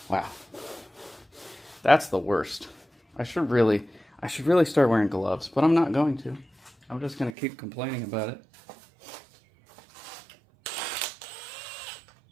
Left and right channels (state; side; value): drops out; left; at 7.4 s